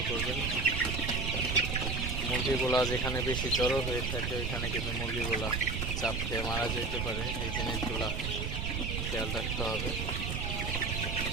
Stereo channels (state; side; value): noise; right; rumble, 2 dB below the sound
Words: করবেন। মুরগিগুলা যেখানে বেশি জড়ো হয়ে থাকে ওইখানে কিন্তু মুরগিগুলা চাপ খেয়ে মারা যেতে পারে। এই জিনিসগুলা খেয়াল রাখতে হবে।